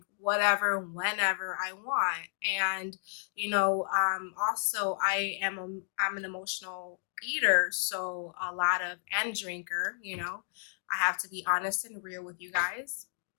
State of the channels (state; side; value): silent; right; digital silence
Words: whatever, whenever I want. And, also I'm an emotional eater, so a lot of, and drinker, I have to be honest and real with you guys.